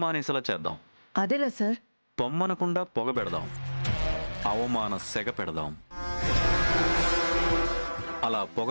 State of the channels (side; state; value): both; inverted; correlation -1.00